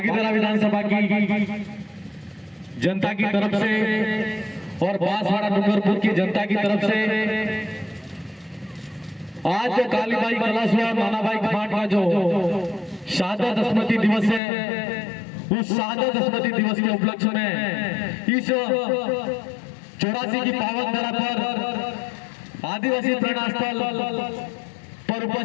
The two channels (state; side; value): drops out; right; at 14.4 s